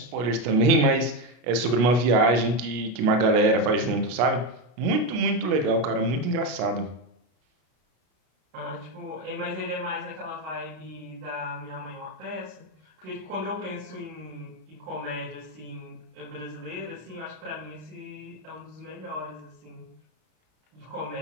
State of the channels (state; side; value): late; left; 33 ms